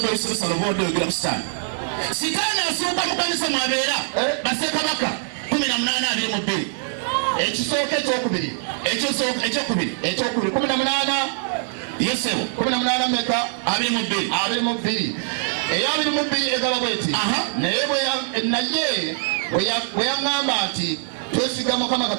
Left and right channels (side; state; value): left; silent; digital silence